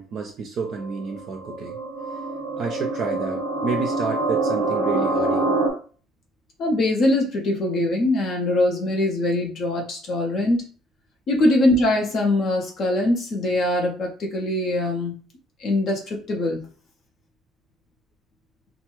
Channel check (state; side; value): normal; both; correlation 0.61